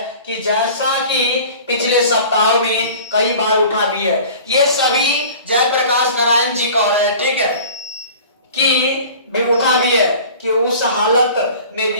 कि जैसा कि पिछले सप्ताह में कई बार उठा भी है, ये सभी जयप्रकाश नारायण जी कह रहे हैं, ठीक है, कि भी उठा भी है कि उस हालत में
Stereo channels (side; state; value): both; inverted; correlation -0.43